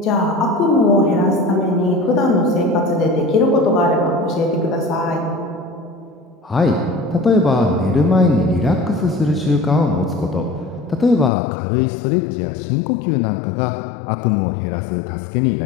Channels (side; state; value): right; drops out; at 11.3 s